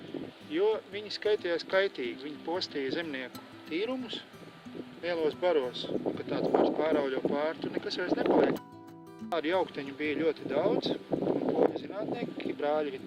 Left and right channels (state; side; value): identical; both; correlation 1.00